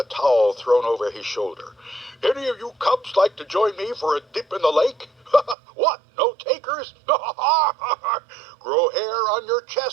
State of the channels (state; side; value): drops out; left; at 5.6 s